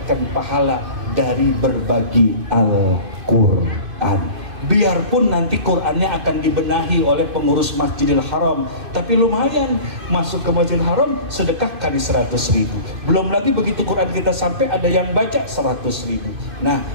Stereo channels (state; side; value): late; left; 2.5 ms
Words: pahala dari berbagi Al-Quran. Biarpun nanti Qurannya akan dibenahi oleh pengurus Masjidil Haram, tapi lumayan masuk ke Masjidil Haram sedekah kali 100.000. Belum lagi begitu Quran kita sampai ada yang baca 100.000. Nah,